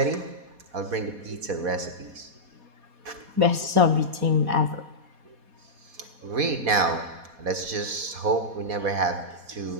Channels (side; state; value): left; late; 4.2 ms